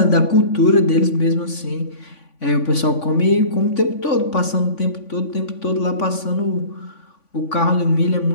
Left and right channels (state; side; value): late; right; 3.5 ms